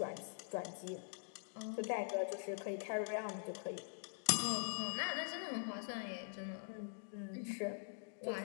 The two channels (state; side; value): silent; right; digital silence